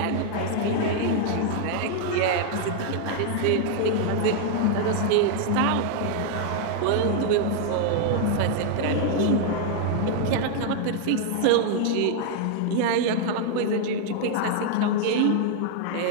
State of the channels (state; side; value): different; both; correlation 0.00